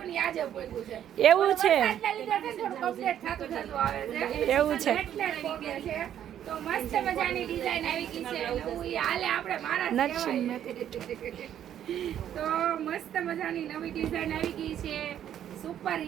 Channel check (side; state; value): left; quieter; 10.4 dB